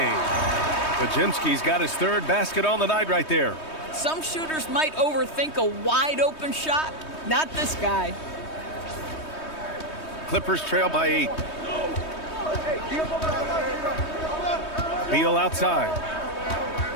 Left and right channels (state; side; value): late; right; 3.2 ms